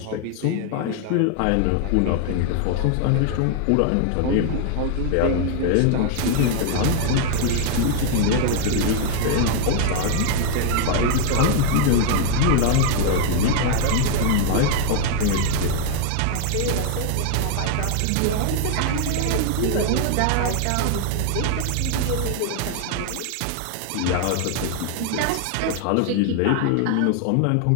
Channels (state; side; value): different; both; correlation 0.01